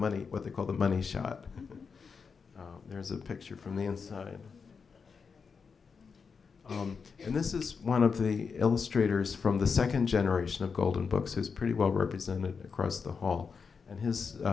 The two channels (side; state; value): right; quieter; 5.6 dB